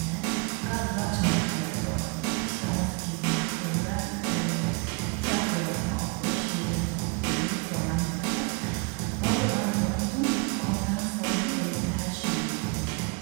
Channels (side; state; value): left; quieter; 30.0 dB